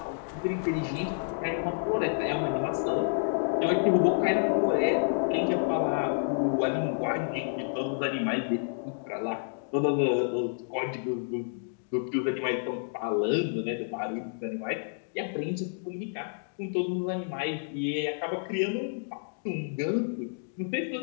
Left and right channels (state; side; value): silent; right; digital silence